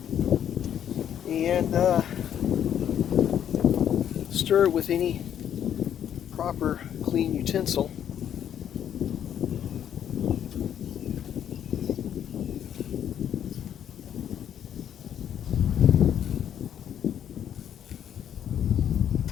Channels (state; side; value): quieter; right; 9.7 dB